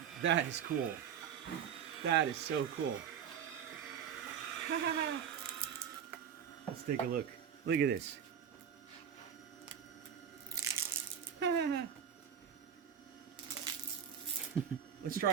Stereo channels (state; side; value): quieter; left; 8.2 dB